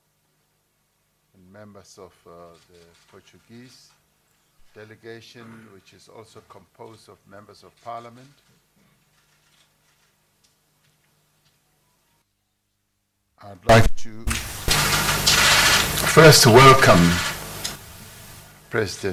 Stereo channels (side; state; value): both; identical; correlation 1.00